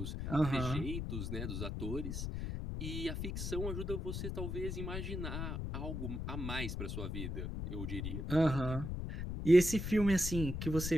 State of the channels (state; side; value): noise; left; rumble, 3 dB below the sound